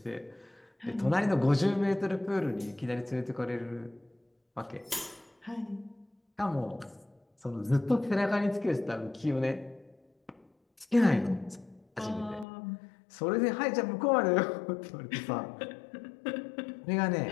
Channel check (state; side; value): drops out; right; at 12.5 s